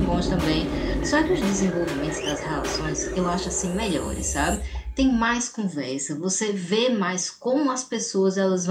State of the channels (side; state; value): both; identical; correlation 1.00